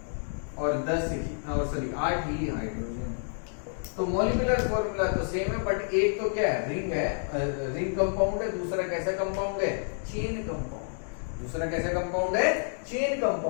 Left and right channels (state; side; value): silent; right; digital silence